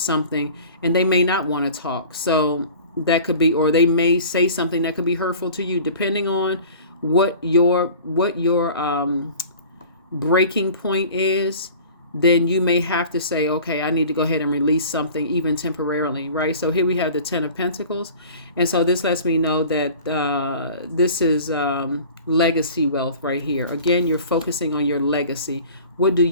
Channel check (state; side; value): inverted; both; correlation -0.43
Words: and they may not want to talk. So that could be, or they may say something that could be hurtful to you, depending on what your breaking point is. Then you may have to say, okay, I need to go ahead and release something, even temporarily, right? So here we have the 10 of Pentacles. And so this lets me know that this is legacy wealth right here. Again, you're focusing on your legacy. What do